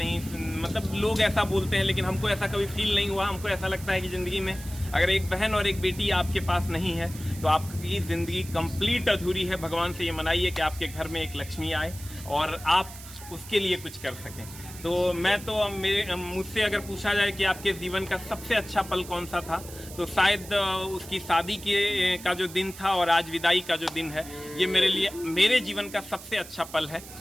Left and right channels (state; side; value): noise; right; hiss, 15 dB below the sound